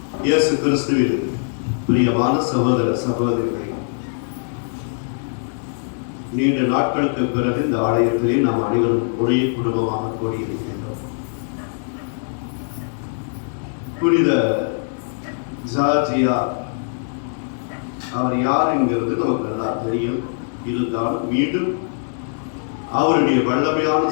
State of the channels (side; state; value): right; silent; digital silence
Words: இயேசு கிறிஸ்துவில் பிரியமான சகோதர சகோதரிகளை, நீண்ட நாட்களுக்கு பிறகு இந்த ஆலயத்திலே நாம் அனைவரும் ஒரே குடும்பமாக கூடியிருக்கின்றோம். புனித ஜார்ஜியா அவர் யார் என்கிறது நமக்கு நல்லா தெரியும். இருந்தாலும் மீண்டும் அவருடைய வல்லமையான